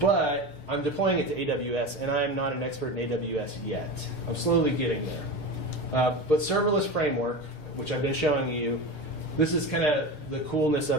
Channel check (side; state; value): right; late; 6.6 ms